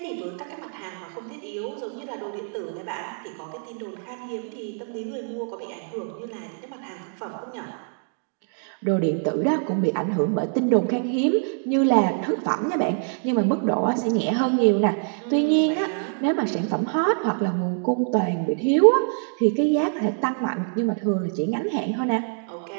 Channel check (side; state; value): left; silent; 57 dB below the other